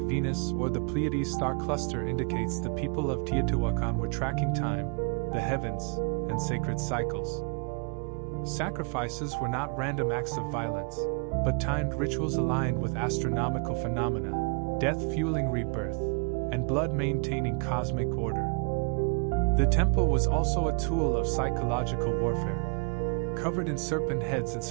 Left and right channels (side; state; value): left; quieter; 35.5 dB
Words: Venus or the Pleiades star cluster indicates the people of Teotihuacan were tracking time, the heavens, and sacred cycles. Sacrifices were not random acts of violence, but timed rituals aligned with astronomical phenomena, death fueling rebirth, and blood maintaining cosmic order. The temple was also a tool of psychological warfare. Covered in serpent heads and